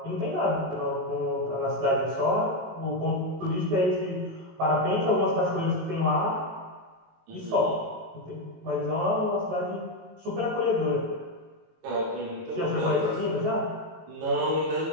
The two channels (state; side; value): late; left; 18 ms